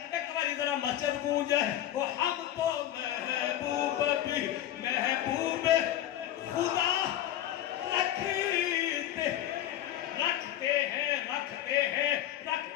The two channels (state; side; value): quieter; right; 12.2 dB